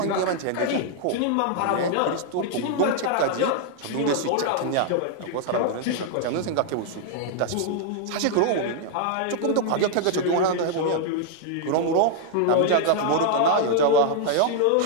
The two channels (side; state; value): both; different; correlation -0.01